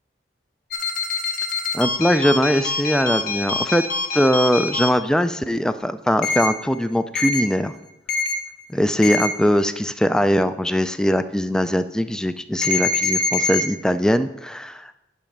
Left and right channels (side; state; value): both; normal; correlation 0.76